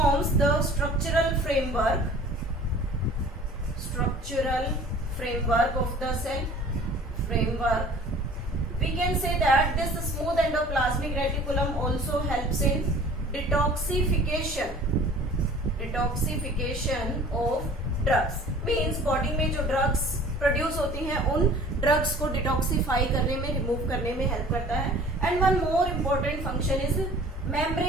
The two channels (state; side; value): normal; both; correlation 0.47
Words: the structural framework of the cell. We can say that this smooth endoplasmic reticulum also helps in detoxification of drugs. Means body में जो drugs produce होती हैं उन drugs को detoxify करने में, remove करने में हेल्प करता है. And one more important function is